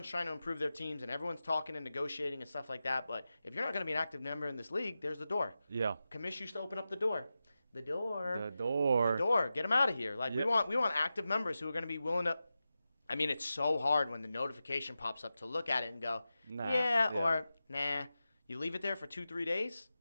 trying to improve their teams, and everyone's talking and negotiating and stuff like that. But if you're not going to be an active member in this league, there's the door. Yeah. Kamish used to open up the door. The door. Get them out of here. Like, we want active members who are going to be willing to. I mean, it's so hard when the notification pops up to look at it and go, or nah. You leave it there for 2-3 days.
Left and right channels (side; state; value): both; inverted; correlation -0.92